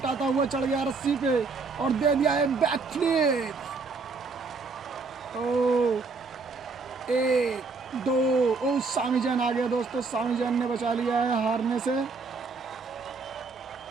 हुआ चढ़ गया रस्सी पे और दे दिया है बैक फ्लिप। एक दो। ओ सामी जैन आ गया दोस्तों, सामी जैन ने बचा लिया है हारने से।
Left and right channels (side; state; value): left; quieter; 4.3 dB